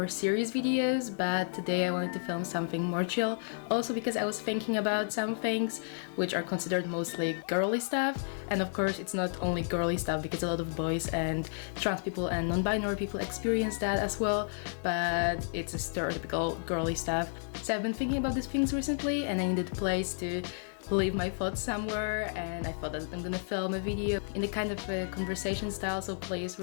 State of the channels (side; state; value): right; silent; digital silence